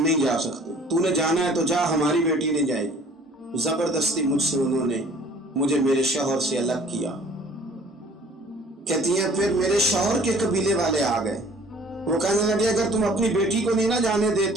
جا سکتے، تو نے جانا ہے تو جا، ہماری بیٹی نہیں جائے گی۔ زبردستی مجھ سے انہوں نے مجھے میرے شوہر سے الگ کیا۔ کہتی ہیں پھر میرے شوہر کے قبیلے والے آ گئے، وہ کہنے لگے اگر تم اپنی بیٹی کو نہیں نہ جانے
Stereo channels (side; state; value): both; normal; correlation 0.53